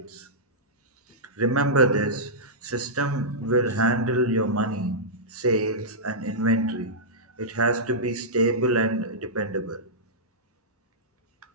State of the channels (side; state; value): both; normal; correlation -0.13